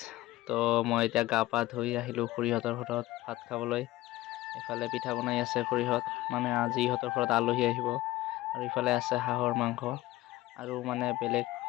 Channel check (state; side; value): quieter; right; 17.2 dB